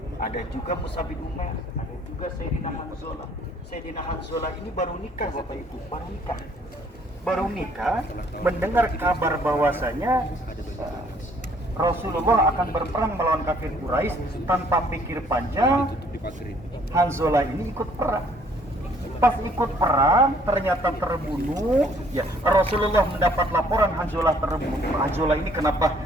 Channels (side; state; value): both; normal; correlation 0.61